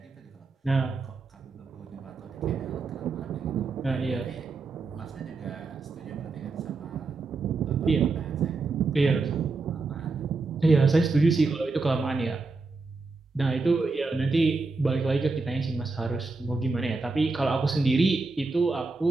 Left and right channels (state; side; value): quieter; left; 3.9 dB